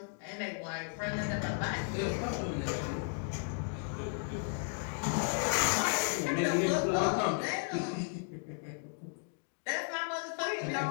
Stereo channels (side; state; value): right; silent; 55 dB below the other